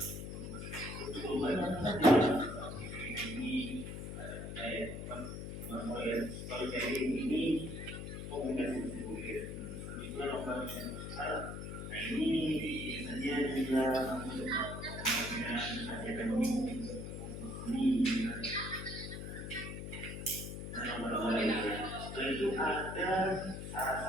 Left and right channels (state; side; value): noise; left; hum, 7 dB below the sound